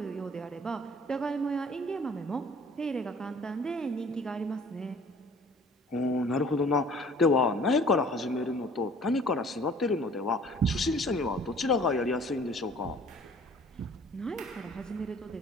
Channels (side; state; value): both; normal; correlation 0.51